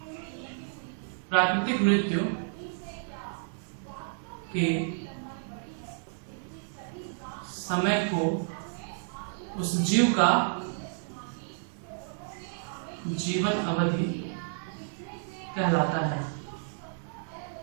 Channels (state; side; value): silent; left; 57 dB below the other